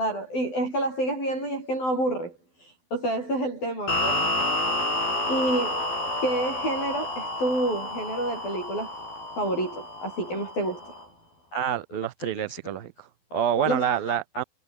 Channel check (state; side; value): late; right; 12 ms